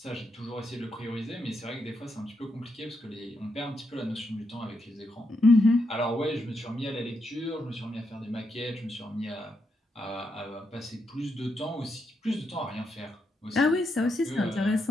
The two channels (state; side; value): normal; both; correlation 0.81